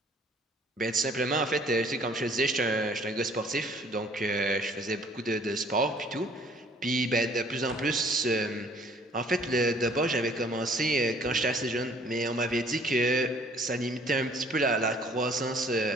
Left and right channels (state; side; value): normal; both; correlation 0.57